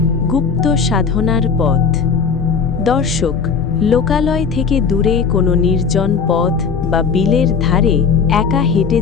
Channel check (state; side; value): quieter; right; 5.8 dB